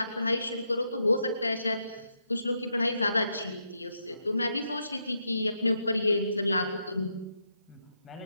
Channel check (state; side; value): inverted; both; correlation -0.81